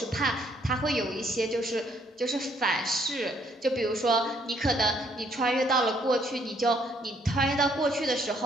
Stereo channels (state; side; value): normal; both; correlation 0.67